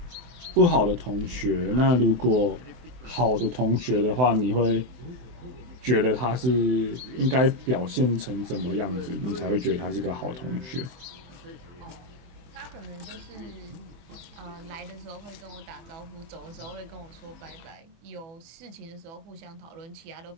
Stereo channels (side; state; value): left; late; 24 ms